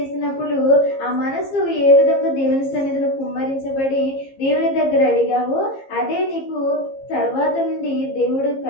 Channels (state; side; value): late; right; 15 ms